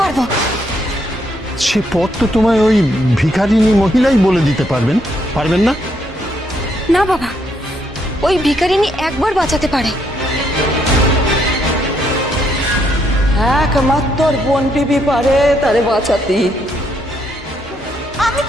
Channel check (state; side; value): normal; both; correlation 0.74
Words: পারবো। সে পথ তো তোমায় ওই ভিখারিনী মহিলাই বলে দিতে পারবেন না? না বাবা, ওই ভিখারিনী একবার বাঁচাতে পারে। একমাত্র বোন বিবি পারে তারে বাঁচাতে। আমি